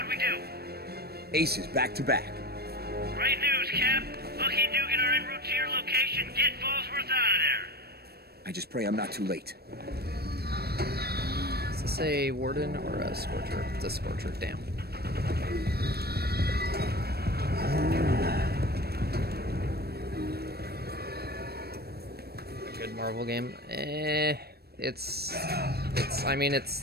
we do? Aces back to back. Great news, Cap. Lucky and Dugan are en route to your location. Get Fallsworth out of there. I just pray I'm not too late. Is this a Warden or a Scorcher? It's a Scorcher, damn. A good Marvel game? It's I mean,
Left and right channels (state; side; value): late; left; 0.46 ms